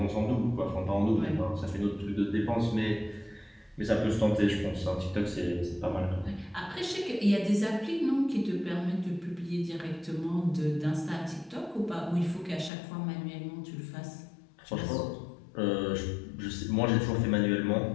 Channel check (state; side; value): drops out; right; at 12.7 s